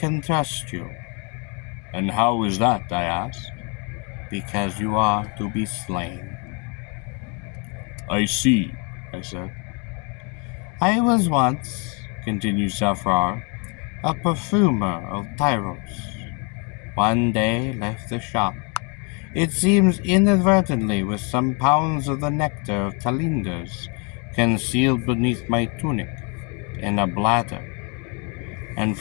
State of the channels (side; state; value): right; quieter; 34.0 dB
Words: trust you. And how is that, I asked. Because you are to be slain. I see, I said. I was once, continued Safrar, a perfumer of Tyros. One day left the shop, it seems inadvertently with some pounds of the nectar of Talinders concealed beneath my tunic in a bladder, and